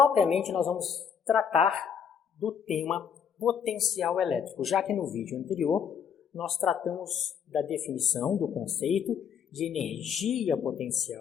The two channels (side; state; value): right; quieter; 7.4 dB